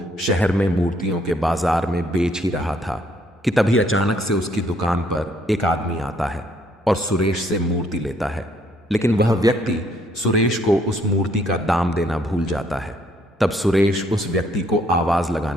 शहर में मूर्तियों के बाजार में बेच ही रहा था कि तभी अचानक से उसकी दुकान पर एक आदमी आता है और सुरेश से मूर्ति लेता है। लेकिन वह व्यक्ति सुरेश को उस मूर्ति का दाम देना भूल जाता है। तब सुरेश उस व्यक्ति को आवाज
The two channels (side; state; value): both; normal; correlation 0.67